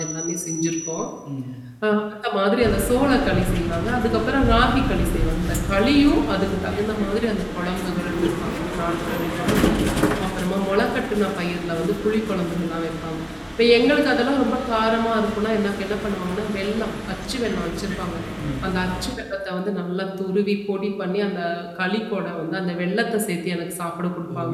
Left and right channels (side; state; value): both; identical; correlation 1.00